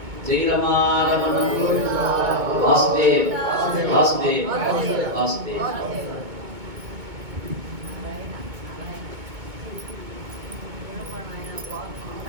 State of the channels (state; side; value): late; left; 2.2 ms